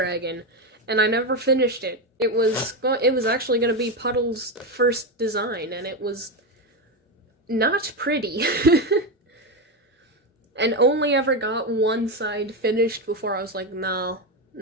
And I never finished it. It was actually going to be Puddle's first design, and it was not pretty. And only ever got one side finished before I was like, no,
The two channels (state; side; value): normal; both; correlation 0.12